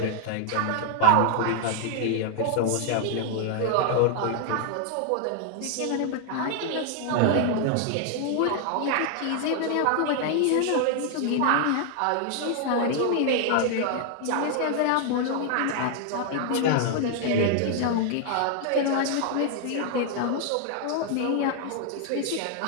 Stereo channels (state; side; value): different; both; correlation 0.00